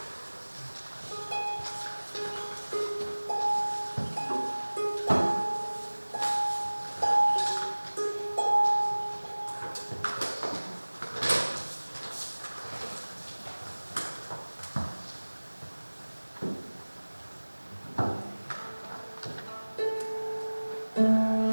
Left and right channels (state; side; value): inverted; both; correlation -1.00